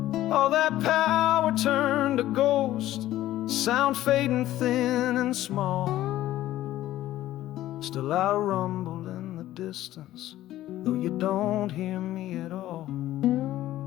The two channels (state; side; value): quieter; right; 14.4 dB